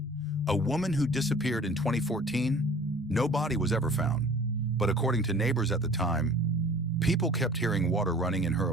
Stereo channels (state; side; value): normal; both; correlation 0.46